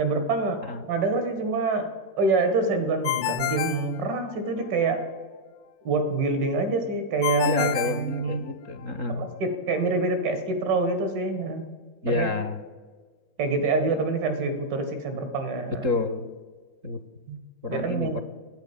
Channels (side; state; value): left; late; 3.8 ms